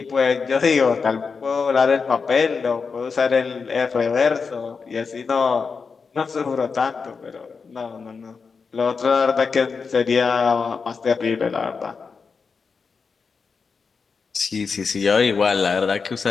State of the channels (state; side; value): quieter; right; 5.2 dB